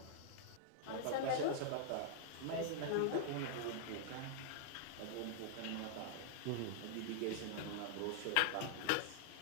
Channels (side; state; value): both; different; correlation -0.01